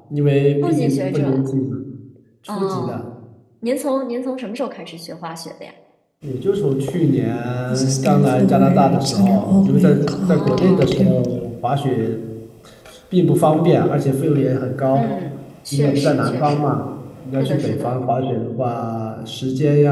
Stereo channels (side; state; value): both; identical; correlation 1.00